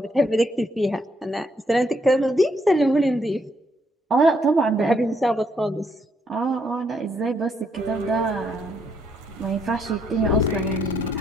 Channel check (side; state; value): both; normal; correlation 0.73